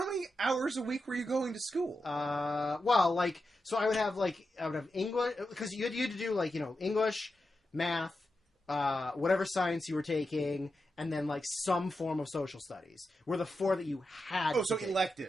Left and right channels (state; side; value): normal; both; correlation 0.89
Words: many hours a week were you going to school? So I would have English, because you had to do English, math, whatever science you were taking, and then some form of social studies were the 4 that you had. Oh, so